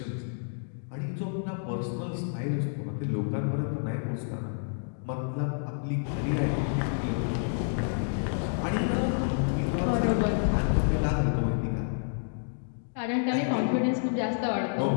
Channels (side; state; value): right; silent; digital silence